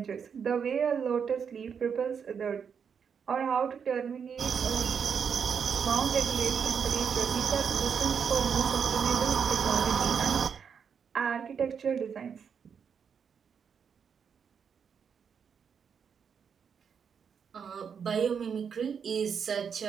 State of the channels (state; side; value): quieter; left; 6.9 dB